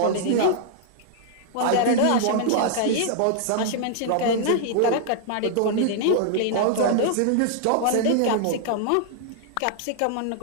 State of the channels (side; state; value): both; different; correlation -0.01